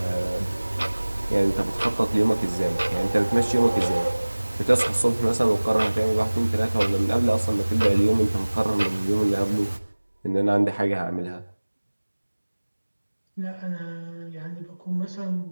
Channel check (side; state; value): both; inverted; correlation -1.00